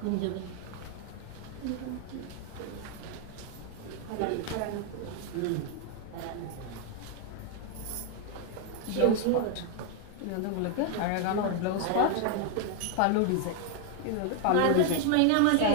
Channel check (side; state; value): both; different; correlation 0.00